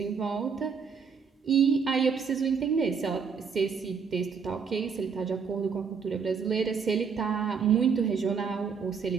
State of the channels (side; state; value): left; quieter; 6.0 dB